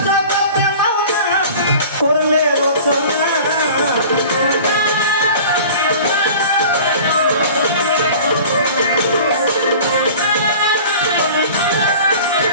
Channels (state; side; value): inverted; both; correlation -0.42